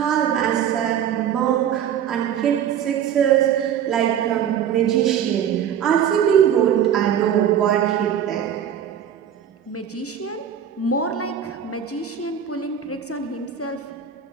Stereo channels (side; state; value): left; quieter; 9.0 dB